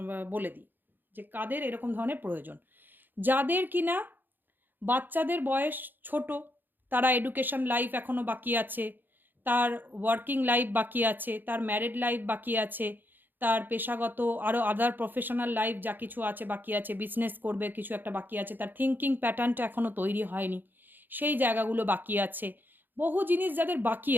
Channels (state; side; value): late; left; 0.091 ms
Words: বলে দিই যে কাদের এরকম ধরনের প্রয়োজন। যাদের কিনা বাচ্চাদের বয়স ছোট, তারা এডুকেশন লাইফ এখনও বাকি আছে, তার ওয়ার্কিং লাইফ বাকি আছে, তার ম্যারিড লাইফ বাকি আছে, তার পেশাগত আরও আদার প্রফেশনাল লাইফ যা কিছু আছে বাকি আছে, বিজনেস করবে কিছু একটা বাকি আছে, তার থিঙ্কিং প্যাটার্নটা এখনও তৈরি হয়নি, সেই জায়গাগুলো বাকি আছে। বহু জিনিস যাদের বাকি